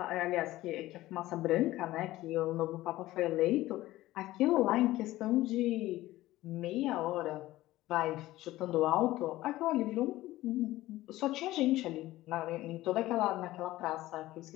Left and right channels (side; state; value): right; quieter; 16.6 dB